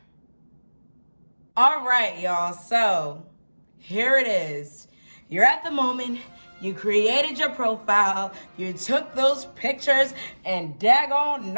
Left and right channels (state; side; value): inverted; both; correlation -1.00